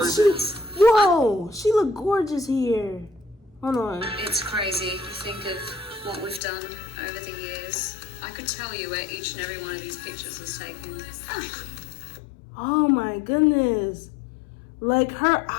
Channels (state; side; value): drops out; right; at 6.4 s